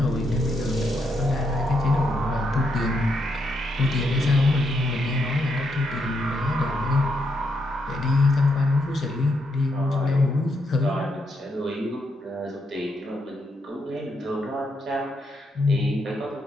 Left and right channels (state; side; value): normal; both; correlation 0.79